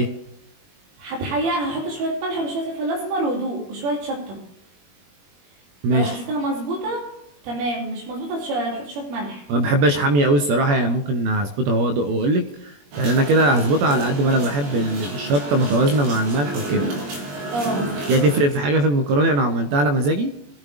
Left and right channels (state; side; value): late; left; 21 ms